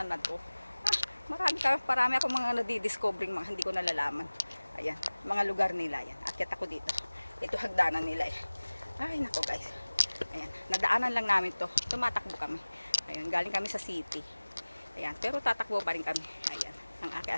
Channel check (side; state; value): both; inverted; correlation -1.00